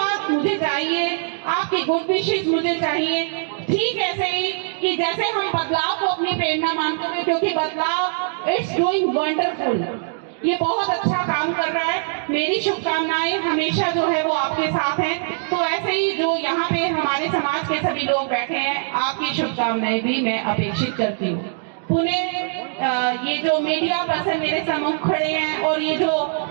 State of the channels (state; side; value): silent; left; digital silence